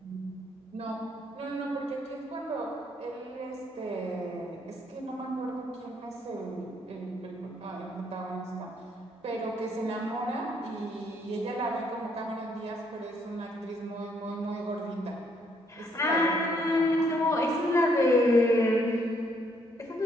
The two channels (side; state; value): both; normal; correlation 0.70